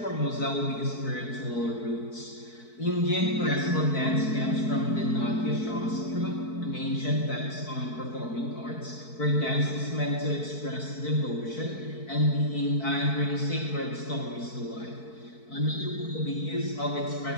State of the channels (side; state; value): right; late; 4.6 ms